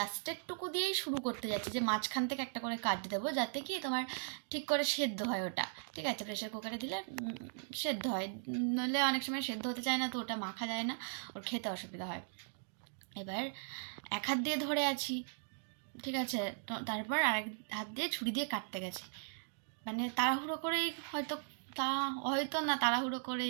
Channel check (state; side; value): silent; left; digital silence